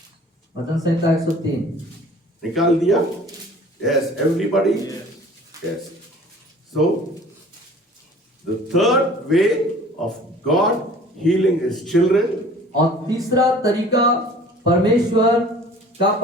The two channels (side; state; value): both; normal; correlation 0.48